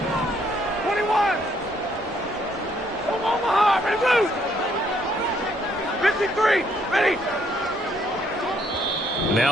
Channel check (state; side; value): normal; both; correlation 0.68